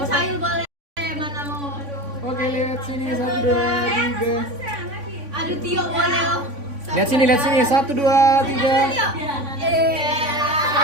Lihat sini. 1, 2, 3.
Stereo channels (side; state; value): left; late; 3.5 ms